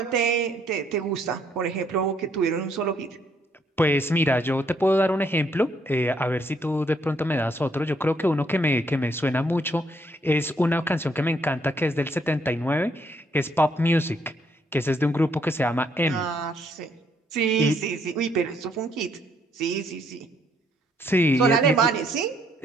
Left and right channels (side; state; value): both; normal; correlation 0.70